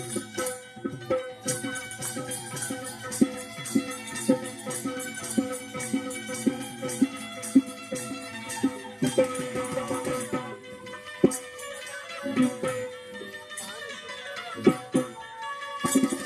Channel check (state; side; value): identical; both; correlation 1.00